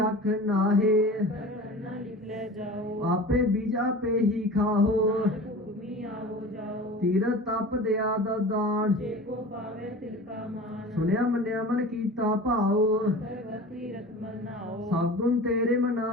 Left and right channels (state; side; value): normal; both; correlation 0.37